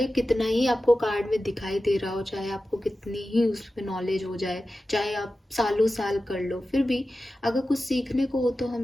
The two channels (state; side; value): normal; both; correlation 0.94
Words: कितना ही आपको कार्ड में दिखाई दे रहा हो, चाहे आपको कितनी ही उसमें नॉलेज हो जाए, चाहे आप सालों साल कर लो, फिर भी अगर कुछ सीखने को हो तो हम